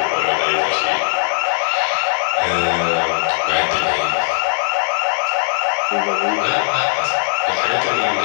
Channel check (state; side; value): silent; right; digital silence